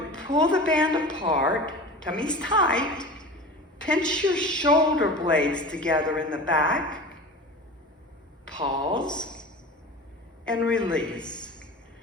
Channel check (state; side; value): normal; both; correlation 0.34